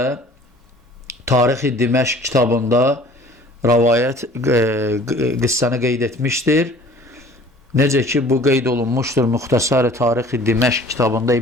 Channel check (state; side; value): normal; both; correlation 0.49